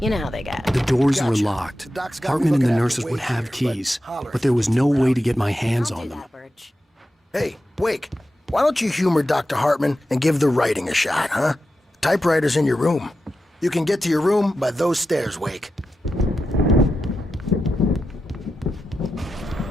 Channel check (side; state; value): both; normal; correlation 0.90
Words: You know how they get. The doors were locked. Hartman and the nurses would have keys, but there was no way to get my hands on them. Hey, Wake, why don't you humor Dr. Hartman and give the writing a shot, huh? Typewriter's in your room. You can get to your room by those stairs, Wake.